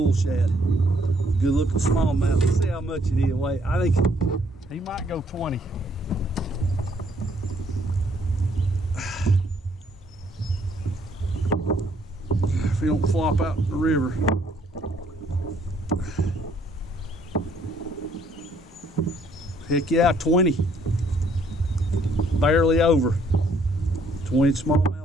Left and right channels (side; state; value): both; normal; correlation 0.66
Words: shad. Good looking smallmouth. Let's see how much it is. Wait, I think he might go 20. If he don't flop out in the river. Heck yeah, 20. Barely over. 20